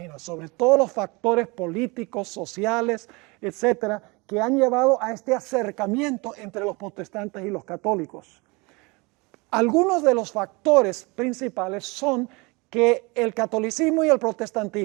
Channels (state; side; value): quieter; left; 26.7 dB